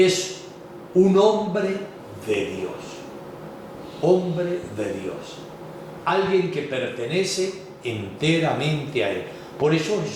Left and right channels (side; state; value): both; identical; correlation 1.00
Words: un hombre de Dios. Hombre de Dios. Alguien que pertenece enteramente a Él. Por eso